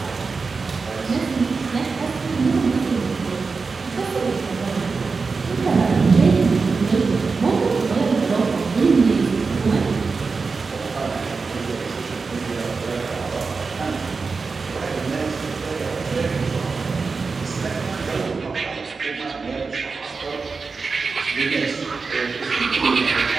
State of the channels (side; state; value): left; quieter; 4.5 dB